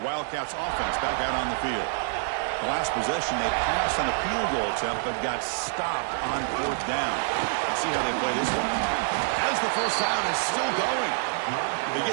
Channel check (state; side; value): silent; left; digital silence